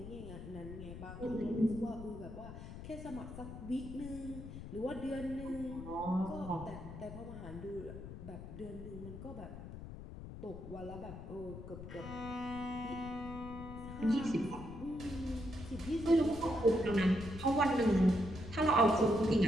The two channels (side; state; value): left; noise; rumble, 11 dB below the sound